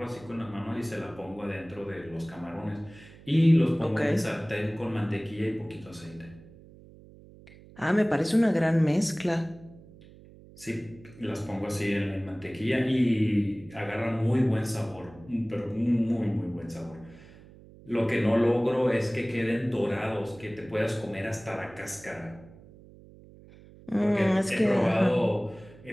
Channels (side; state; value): right; noise; hum, 21 dB below the sound